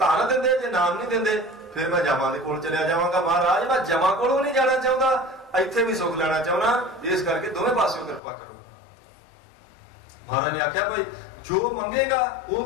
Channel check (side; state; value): right; drops out; at 8.2 s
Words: देंदे जे नाम नहीं देंदे फिर मैं जमा दे कोल चलिया जावांगा। महाराज मैं जमा कोलों नहीं जाना चाहता, इत्थे भी सुख लेना चाहना, इस करके दोवें पासों कृपा करो। महाराज ने आख्या भाई जो मंगेगा वो